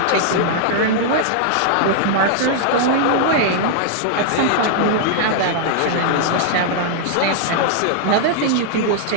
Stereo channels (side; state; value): both; different; correlation -0.01